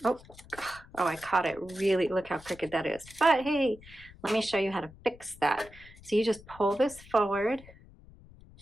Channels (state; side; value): noise; left; rumble, 21 dB below the sound